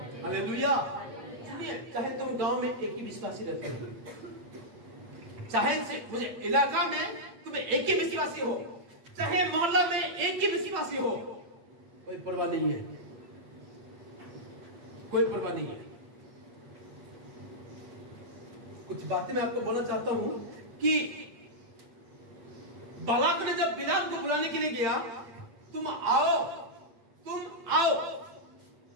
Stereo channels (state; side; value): late; left; 8.8 ms